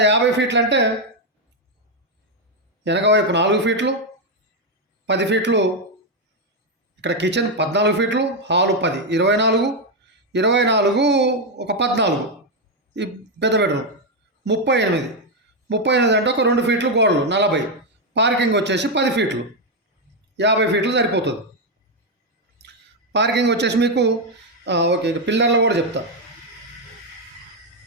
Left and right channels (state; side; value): normal; both; correlation 0.03